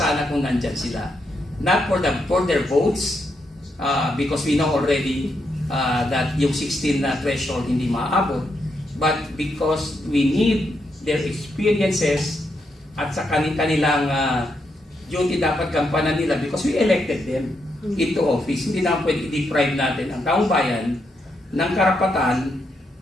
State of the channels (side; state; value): both; normal; correlation 0.80